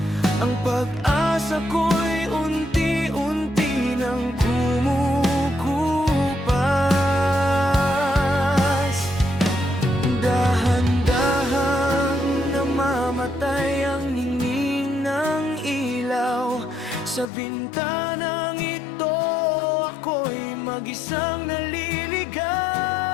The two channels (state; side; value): drops out; right; at 17.3 s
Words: ang pag-asa ko'y unti-unti nang kumukupas. Dahan-dahang namamatay ang ningning ng ilaw. Sa bintanang ito ako'y mag-isang naliligaw.